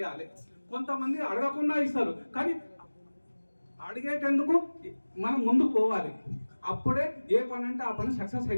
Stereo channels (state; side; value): inverted; both; correlation -1.00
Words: కొంతమంది అడగకుండా ఇస్తారు, కానీ అడిగేటందుకు మనం ముందుకు పోవాలి. అప్పుడే ఏ పని అంటే ఆ పని సక్సెస్